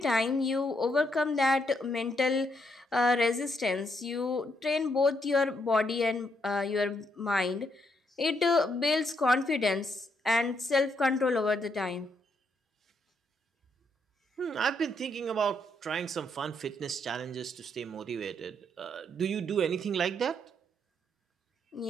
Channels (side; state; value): both; normal; correlation 0.75